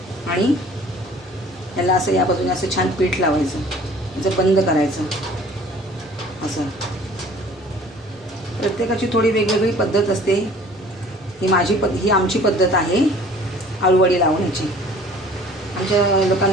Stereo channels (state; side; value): normal; both; correlation 0.50